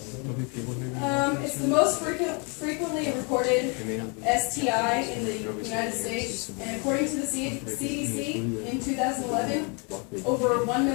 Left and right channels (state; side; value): quieter; right; 33.1 dB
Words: It's the most frequently reported STI in the United States, and according to the CDC, in 2011, over 1